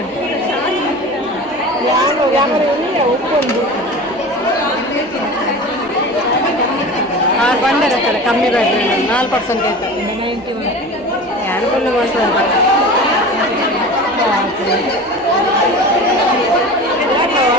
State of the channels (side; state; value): both; normal; correlation 0.34